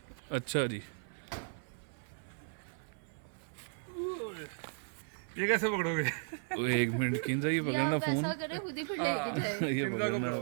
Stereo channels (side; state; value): left; silent; 54 dB below the other